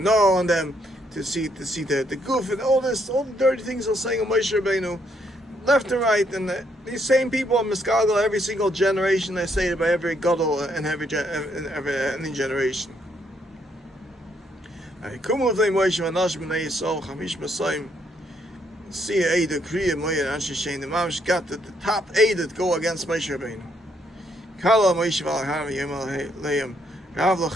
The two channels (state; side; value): normal; both; correlation 0.73